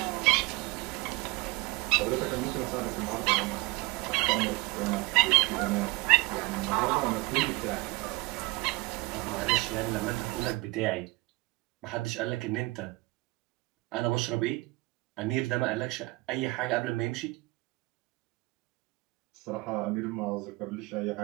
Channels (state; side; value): quieter; left; 23.8 dB